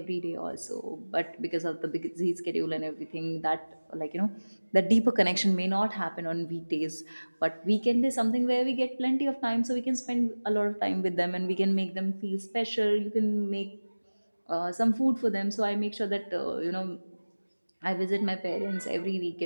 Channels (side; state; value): both; inverted; correlation -1.00